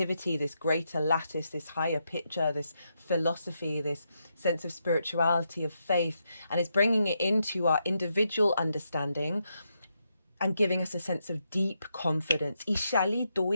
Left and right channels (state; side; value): inverted; both; correlation -0.82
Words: this greater lattice, this higher picture, this philosophy, this sense of spirituality, of faith, and it's bringing it into our individual understanding and giving us a sense of deep confidence. And